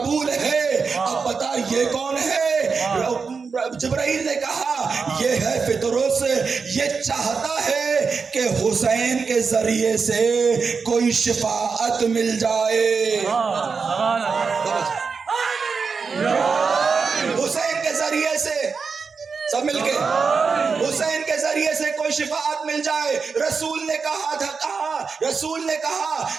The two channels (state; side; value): quieter; left; 5.2 dB